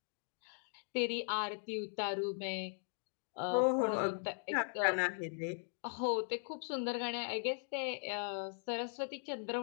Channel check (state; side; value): silent; right; 52 dB below the other